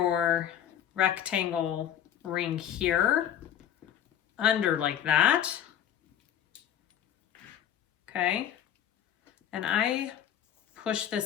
rectangle ring here, under like that. Okay, and I push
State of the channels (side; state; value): right; quieter; 10.2 dB